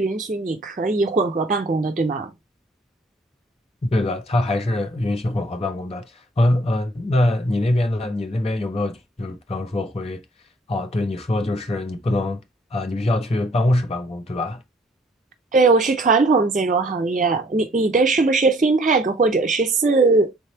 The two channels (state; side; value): normal; both; correlation 0.60